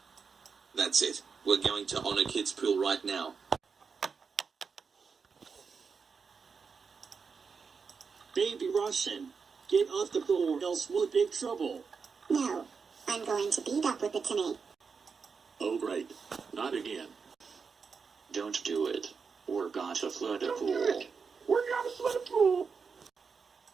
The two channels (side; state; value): left; quieter; 5.5 dB